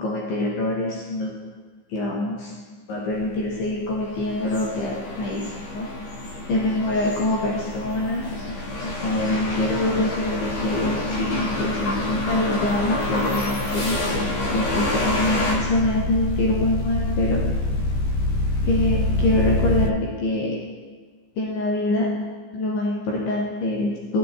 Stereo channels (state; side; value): late; right; 15 ms